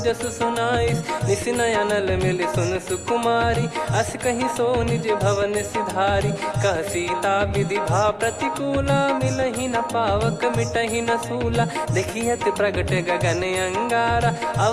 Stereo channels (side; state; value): both; identical; correlation 1.00